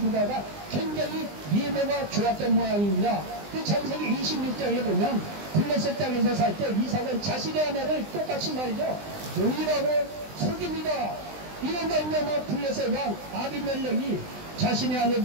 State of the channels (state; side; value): late; left; 20 ms